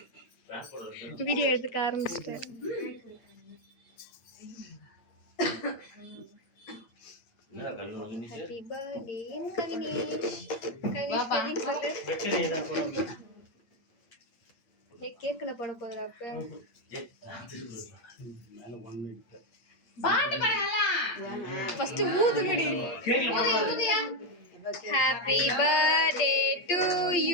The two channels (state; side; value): late; right; 8.6 ms